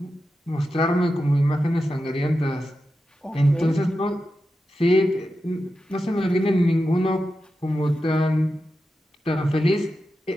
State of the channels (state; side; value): normal; both; correlation 0.90